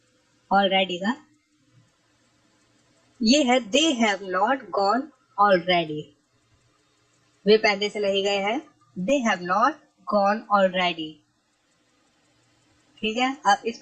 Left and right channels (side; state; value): both; identical; correlation 1.00